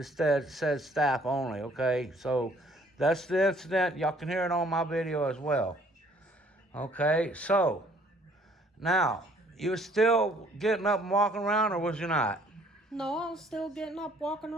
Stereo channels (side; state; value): both; normal; correlation 0.60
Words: says staff only, okay? So that's the incident. Y'all can hear it on my video as well. Okay, so now, you were still getting up and walking around, or was you not? No, I was still getting up, walking